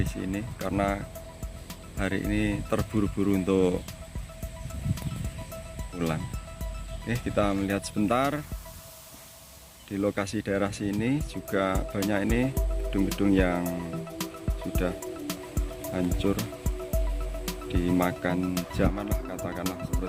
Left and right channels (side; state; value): both; identical; correlation 1.00